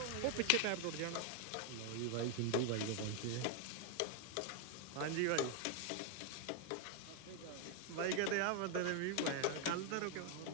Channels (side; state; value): both; different; correlation 0.01